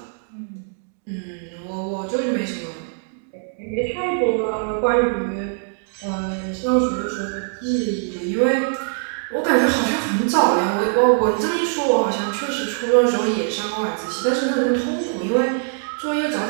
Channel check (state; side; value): silent; left; digital silence